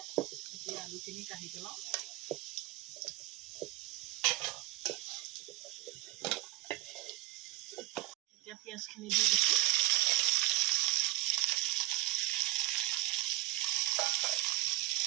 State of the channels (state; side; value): quieter; left; 19.7 dB